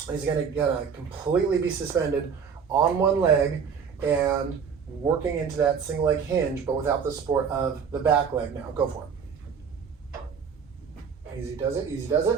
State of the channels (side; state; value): left; quieter; 6.5 dB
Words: is going to completely be suspended on one leg and working into that single leg hinge, but without the support of the back leg. Now, go for it. Easy does it, easy does